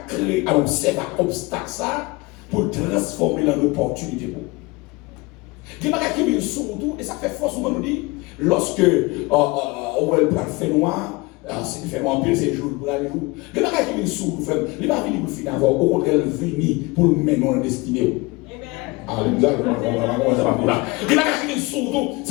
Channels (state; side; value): quieter; right; 24.0 dB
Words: créé un obstacle ça pour transformer en opportunité. Il y a des gens qui viennent sur tout et ça fait force nous dit lorsque on va le faire noir. C'est fait un peu ces jours pour aller jour. Il y a des gens qui viennent sur nous, il va venir pour le finir avant, au contraire, venir pour nous mener en destinée. Alléluia, il y a des gens qui viennent sur nous,